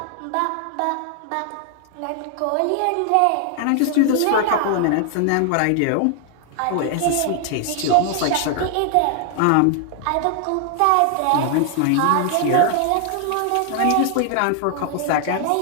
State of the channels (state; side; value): different; both; correlation 0.00